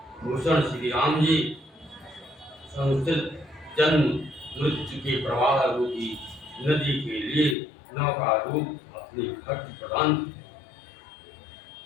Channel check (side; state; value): right; drops out; at 7.6 s